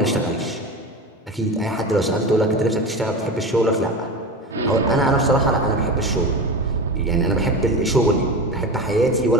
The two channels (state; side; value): normal; both; correlation 0.26